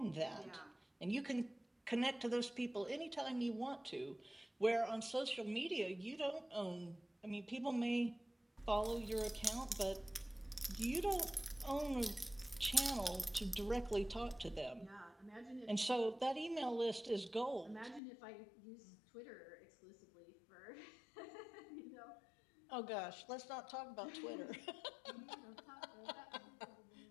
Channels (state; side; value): drops out; right; at 18.0 s